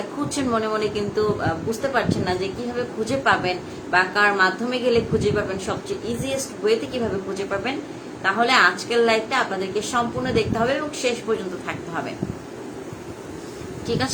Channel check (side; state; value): both; identical; correlation 1.00